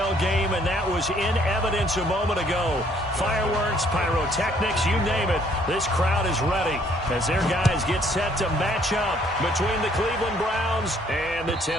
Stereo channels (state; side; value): normal; both; correlation 0.64